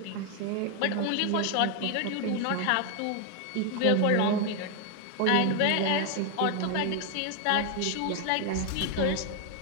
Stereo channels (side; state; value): both; different; correlation 0.01